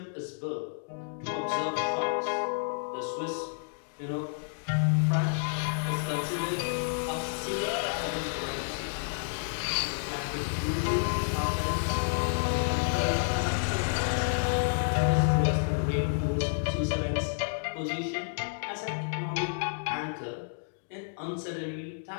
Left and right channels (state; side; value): silent; right; digital silence